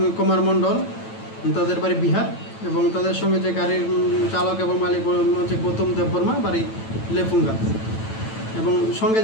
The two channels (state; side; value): late; right; 9.0 ms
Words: কুমার মণ্ডল, তাদের বাড়ি বিহার। এবং তাদের সঙ্গে যে গাড়ির চালক এবং মালিক হচ্ছে গৌতম দেববর্মা, বাড়ি লেফুঙ্গা। এবং সঙ্গে